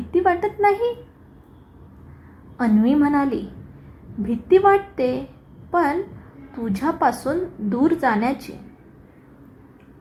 वाटत नाही? अन्वी म्हणाली. भीती वाटते, पण तुझ्यापासून दूर जाण्याची.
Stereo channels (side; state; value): both; identical; correlation 1.00